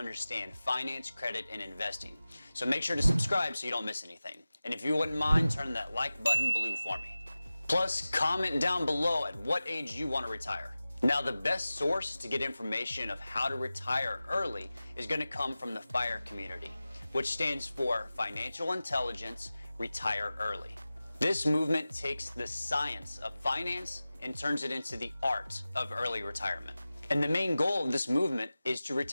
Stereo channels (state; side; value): inverted; both; correlation -0.96